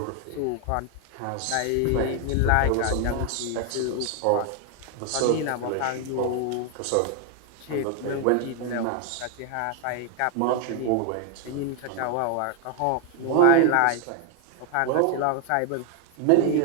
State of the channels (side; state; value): both; different; correlation 0.00